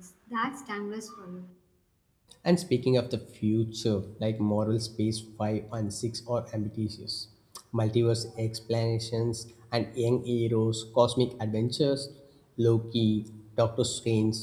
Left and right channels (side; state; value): both; identical; correlation 1.00